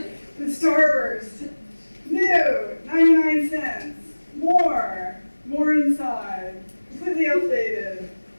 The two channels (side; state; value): both; inverted; correlation -1.00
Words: The starburst. New. 99 cents. More inside. Completely updated.